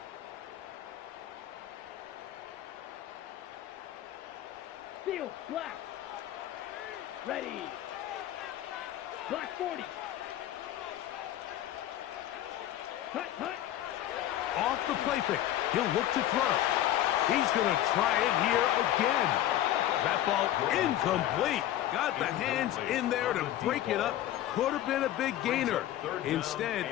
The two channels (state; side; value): quieter; right; 12.8 dB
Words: Field black. Ready. Black 40. Cut. Off the play fake. He'll look to throw. He's going to try it here again. That ball incomplete. Got the hands in there to break it up. Could have been a big gainer. Instead,